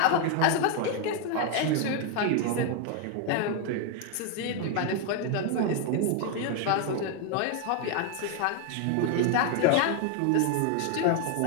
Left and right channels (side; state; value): both; different; correlation 0.00